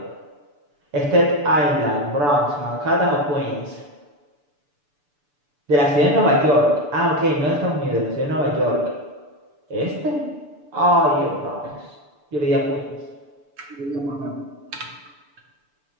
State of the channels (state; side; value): late; left; 6.9 ms